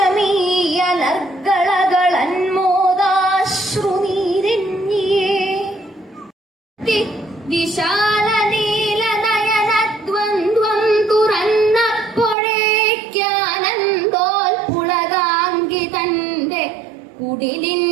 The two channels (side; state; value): left; drops out; at 12.4 s